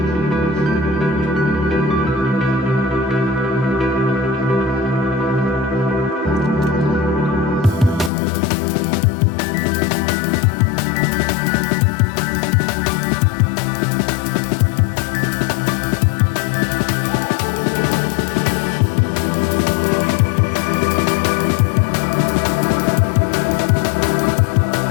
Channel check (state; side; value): drops out; right; at 8.1 s